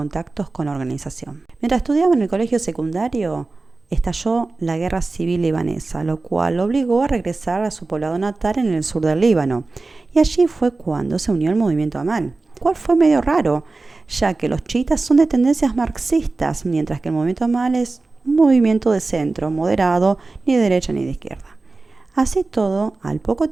con la organización. Mientras estudiaba en el colegio secundario, estalló la guerra civil libanesa, lo cual lo obligó a regresar a su poblado natal en el sur del Líbano. Y allí fue cuando se unió al movimiento Amal, cual fue medio raro, ya que los chiitas son de tendencias marxistas, mientras que el movimiento Amal es un movimiento de centro, moderado, ni de derecha ni de izquierda. Así todo, al poco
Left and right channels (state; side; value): quieter; left; 3.6 dB